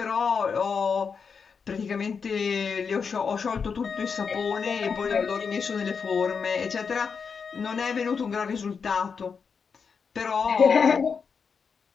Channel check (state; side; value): quieter; right; 5.8 dB